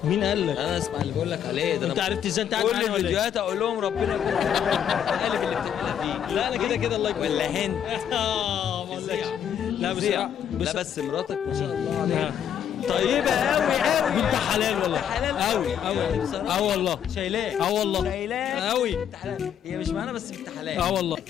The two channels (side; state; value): right; quieter; 9.1 dB